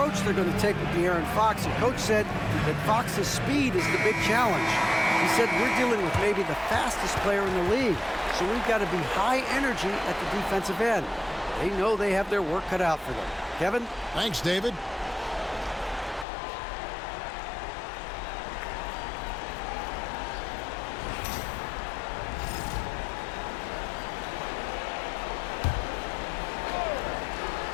they're going to take with De'Aaron Fox, and Coach said that Fox's speed is the big challenge. He said, we're dealing with maybe the fastest player in the league, so we've got to be high energy at the defensive end. They know they have their work cut out for them. Kevin? Thanks, David.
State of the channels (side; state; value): right; drops out; at 16.2 s